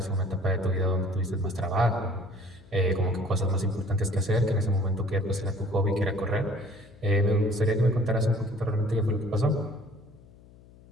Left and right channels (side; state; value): left; noise; hum, 24 dB below the sound